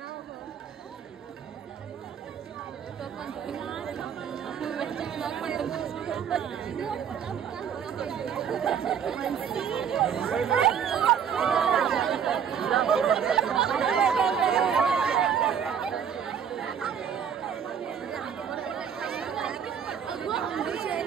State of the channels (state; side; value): quieter; left; 7.8 dB